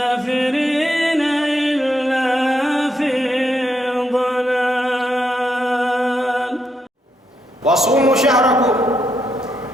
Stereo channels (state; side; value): normal; both; correlation 0.80